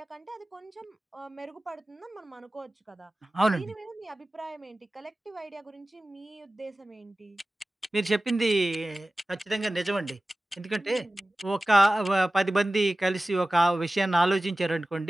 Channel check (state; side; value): normal; both; correlation 0.97